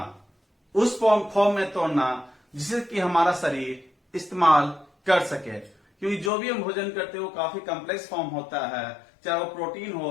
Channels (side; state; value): right; drops out; at 6.3 s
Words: उस फॉर्म में तोड़ना जिससे कि हमारा शरीर इस्तेमाल कर सके। क्योंकि जो भी हम भोजन करते हैं वो काफी कॉम्प्लेक्स फॉर्म होता है, चाहे वो प्रोटीन